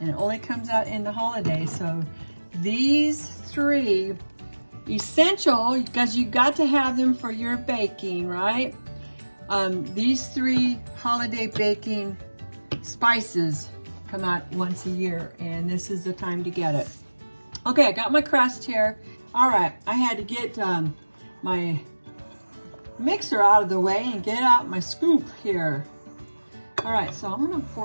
it only comes out in the holidays. So these three, essential, because you got to have them for your baking, right? These three holiday baking spices come out once a year, and this is the time to get it. Okay, I got my crust here. All right, I had to get my mixer out of the way and get out my scoop here. All right, so I'm gonna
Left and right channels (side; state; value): both; inverted; correlation -1.00